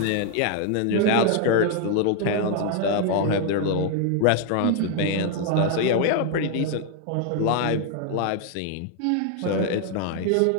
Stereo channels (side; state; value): both; different; correlation 0.00